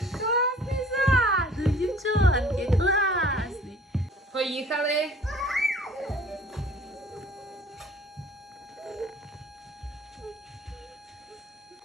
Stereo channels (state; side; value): normal; both; correlation 0.51